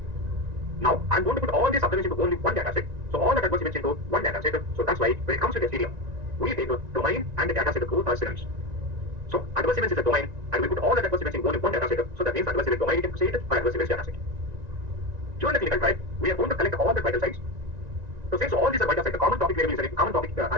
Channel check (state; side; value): late; left; 1.9 ms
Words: Now, I'm going to put all these observations into only one data set. So, all the adverse events into one data set. So, that's why when it comes to the stadium, we take the domain and the data set both are synonyms. So, adverse events is a domain, and we put all the adverse events in only one data set. So, that means adverse event domain, you can say it, or adverse events data set. During the clinical trial, we are going to collect all the vital signs. So, since all these are vital signs, the common topic variable is the common topic is